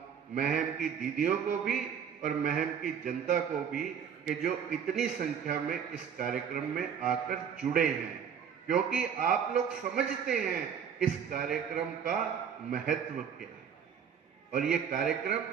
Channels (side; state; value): left; quieter; 7.7 dB